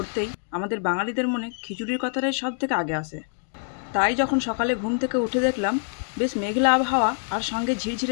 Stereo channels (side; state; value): right; silent; digital silence